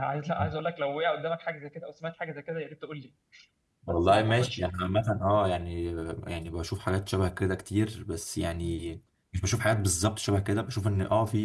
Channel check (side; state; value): both; identical; correlation 1.00